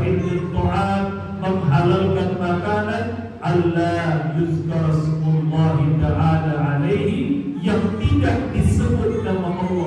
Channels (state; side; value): identical; both; correlation 1.00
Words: ta'am, menghalalkan makanan Allah yuzkar smullahi ta'ala alaihi, yang tidak disebut nama